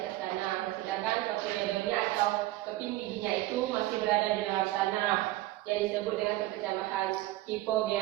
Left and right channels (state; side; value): quieter; left; 17.1 dB